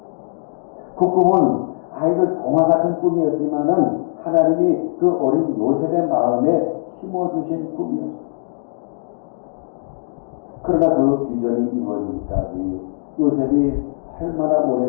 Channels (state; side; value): silent; right; digital silence